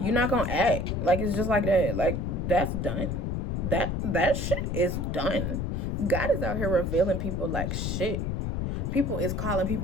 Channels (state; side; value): noise; left; rumble, 1 dB below the sound